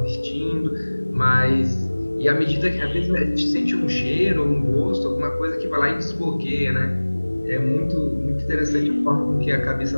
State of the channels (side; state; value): both; inverted; correlation -1.00